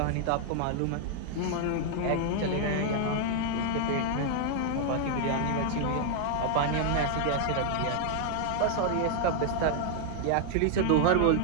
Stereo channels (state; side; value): different; both; correlation 0.00